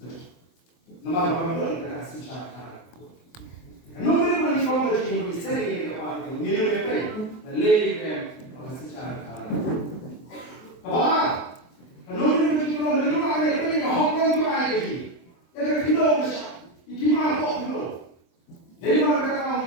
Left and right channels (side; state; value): right; late; 23 ms